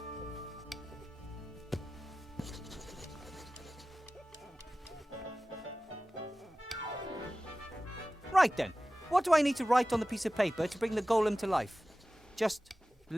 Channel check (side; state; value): both; normal; correlation 0.96